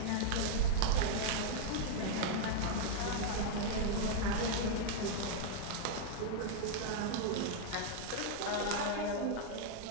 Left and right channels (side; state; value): both; different; correlation -0.01